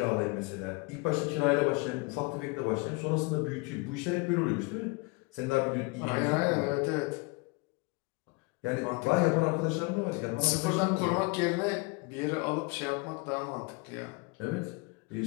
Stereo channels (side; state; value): right; quieter; 27.2 dB